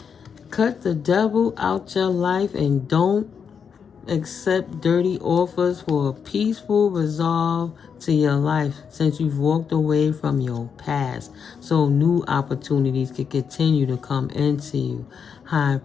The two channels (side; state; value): right; quieter; 6.7 dB